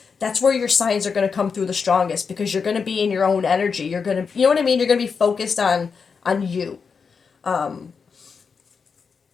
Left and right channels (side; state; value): right; quieter; 5.6 dB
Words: that's where your signs are going to come through the strongest because you're going to be in your own energy. You're going to, you know what I mean? You're going to be focused on you.